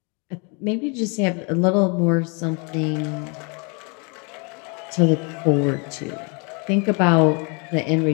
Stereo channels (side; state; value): right; quieter; 33.9 dB